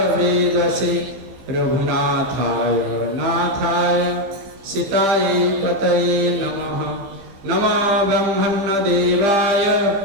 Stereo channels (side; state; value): left; late; 15 ms